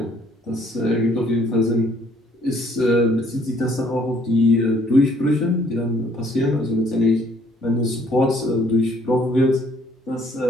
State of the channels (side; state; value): both; normal; correlation 0.63